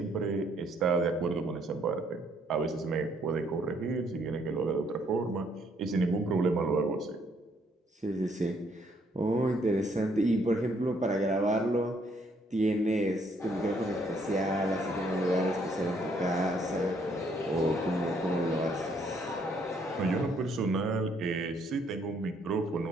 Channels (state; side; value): normal; both; correlation 0.68